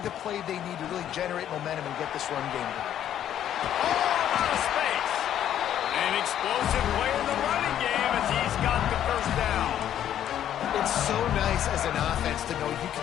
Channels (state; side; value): quieter; right; 10.7 dB